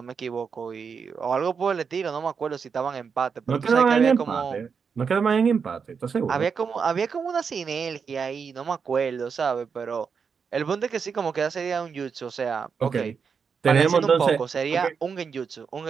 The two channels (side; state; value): left; quieter; 6.0 dB